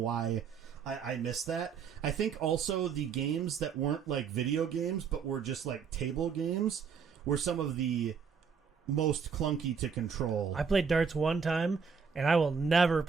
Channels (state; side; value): quieter; left; 6.3 dB